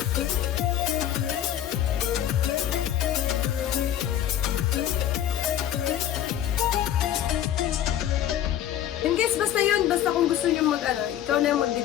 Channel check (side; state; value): right; quieter; 11.3 dB